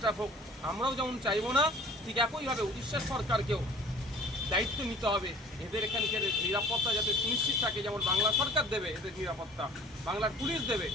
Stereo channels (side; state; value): both; normal; correlation 0.49